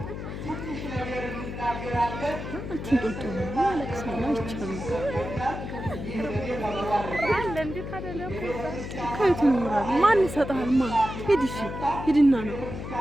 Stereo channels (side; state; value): left; noise; hum, 7 dB below the sound